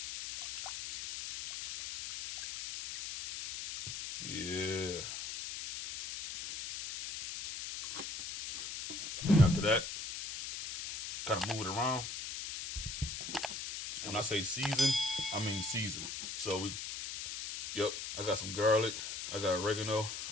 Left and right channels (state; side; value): noise; left; hiss, 6 dB below the sound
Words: Yeah. And after that, kind of move it around. And when I say season, I mean season. So I got some garlic, I got oregano,